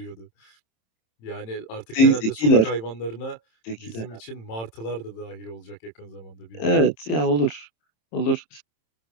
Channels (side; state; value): right; late; 27 ms